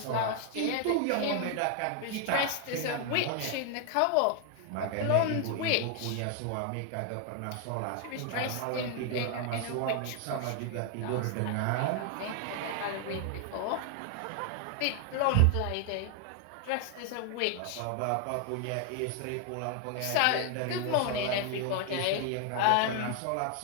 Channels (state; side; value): different; both; correlation 0.00